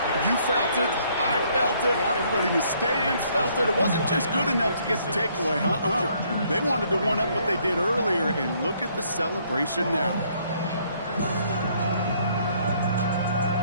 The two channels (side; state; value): both; inverted; correlation -0.66